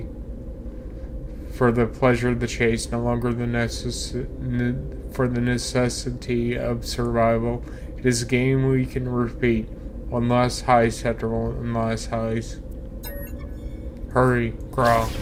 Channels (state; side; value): identical; both; correlation 1.00